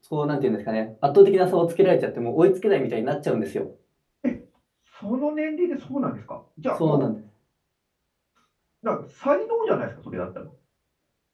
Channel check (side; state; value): both; identical; correlation 1.00